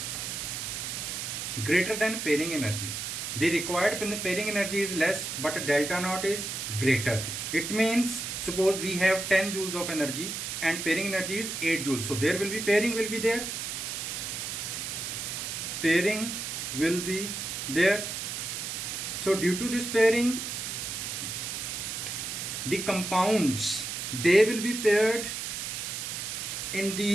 greater than pairing energy, the required pairing energy is less but delta naught is greater. It means, suppose we have 10 joules of energy and pairing energy is 8 joules, so there will be pairing will be there, pairing will be there. So due to this pairing, the compounds, they will be paired in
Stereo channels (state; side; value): noise; right; hiss, 4 dB below the sound